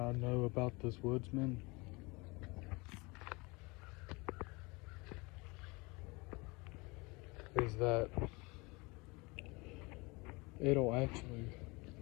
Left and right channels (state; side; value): quieter; right; 26.1 dB